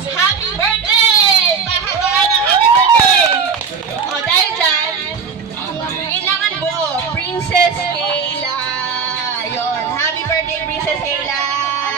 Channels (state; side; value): quieter; left; 5.9 dB